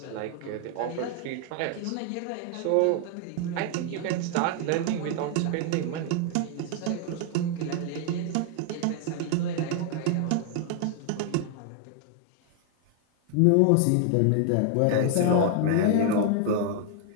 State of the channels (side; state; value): both; different; correlation 0.00